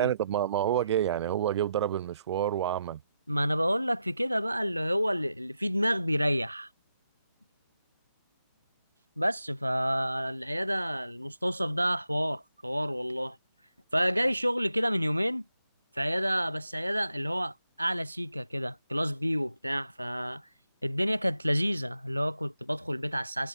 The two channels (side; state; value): both; inverted; correlation -0.85